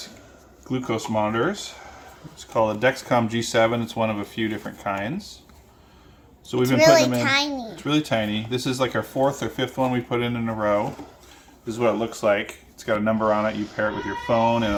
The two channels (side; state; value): both; identical; correlation 1.00